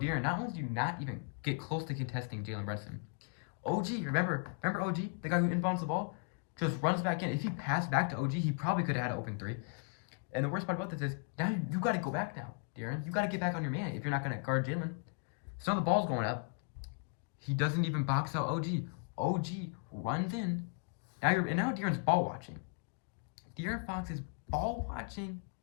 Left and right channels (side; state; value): right; quieter; 36.4 dB